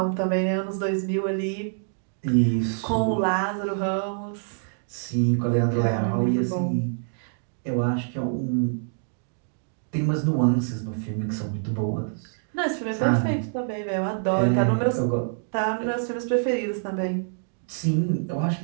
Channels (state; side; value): silent; left; digital silence